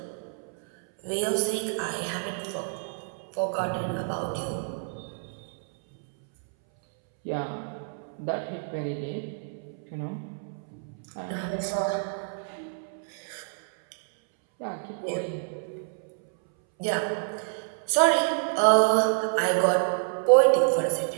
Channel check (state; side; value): silent; left; 59 dB below the other